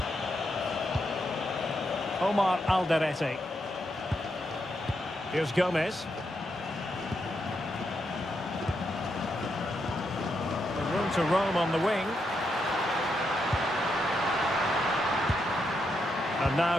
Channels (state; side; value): normal; both; correlation 0.82